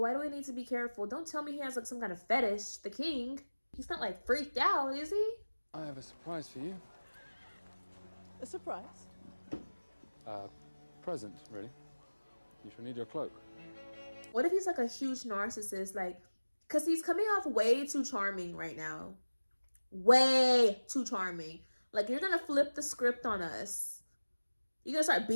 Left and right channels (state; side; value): inverted; both; correlation -1.00